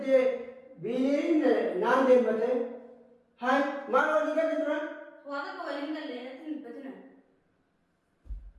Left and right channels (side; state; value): both; identical; correlation 1.00